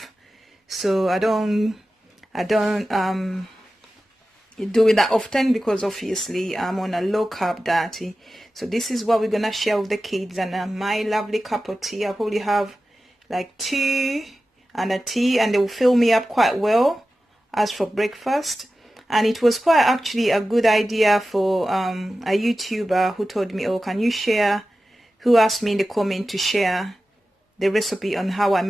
so I don't do it that often because obviously I'm on a low carb diet. So this is what we're gonna share with the kids, and my lovely cup of tea. I probably have like 2 and a tea, and they will fill me up quite well as for breakfast. And it was quite actually a good idea for a YouTuber who told me, oh, can you share, who asked me in the comment to share the recipe on how I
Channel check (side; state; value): both; normal; correlation 0.94